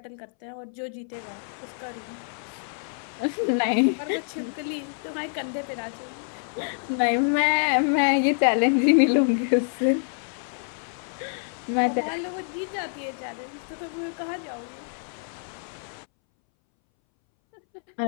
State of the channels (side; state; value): right; silent; 60 dB below the other